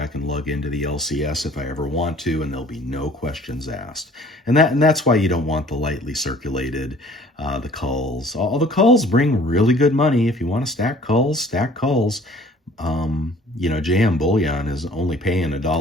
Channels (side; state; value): both; normal; correlation 0.53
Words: can lug into the LCS if I ever want to, and there'll be no questions asked. And that's why you don't want the lightly circulated, the culls. All the culls bring really good money. If you want to stack culls, stack culls. You know, JM Bullion is only paying